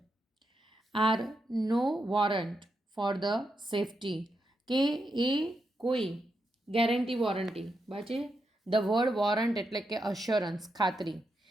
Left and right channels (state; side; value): normal; both; correlation 0.84